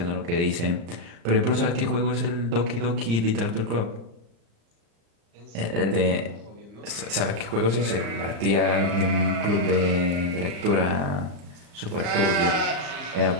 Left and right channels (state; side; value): late; left; 35 ms